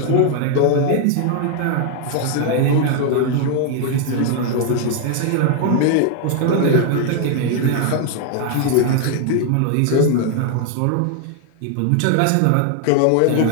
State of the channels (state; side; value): different; both; correlation 0.00